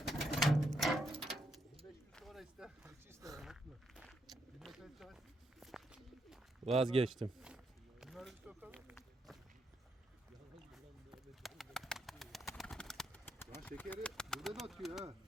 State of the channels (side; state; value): both; normal; correlation 0.79